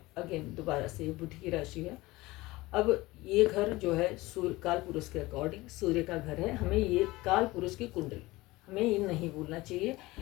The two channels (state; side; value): quieter; right; 20.1 dB